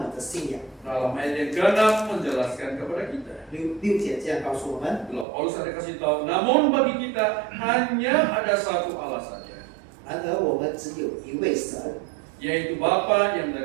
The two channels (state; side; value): drops out; left; at 5.2 s